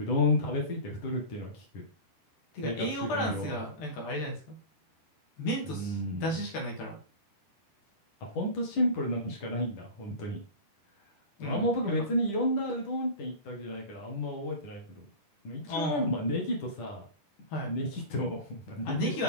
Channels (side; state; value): right; late; 10 ms